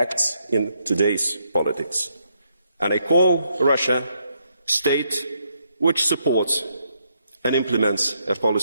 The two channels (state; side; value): inverted; both; correlation -0.76